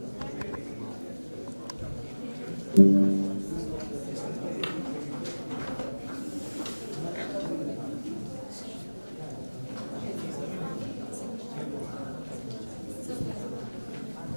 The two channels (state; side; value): inverted; both; correlation -1.00